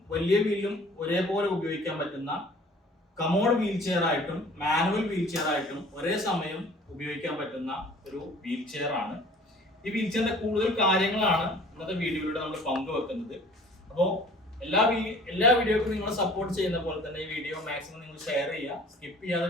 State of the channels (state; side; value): normal; both; correlation 0.49